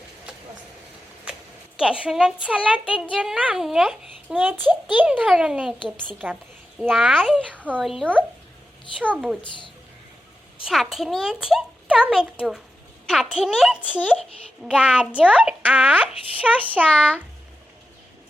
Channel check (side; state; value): both; normal; correlation 0.91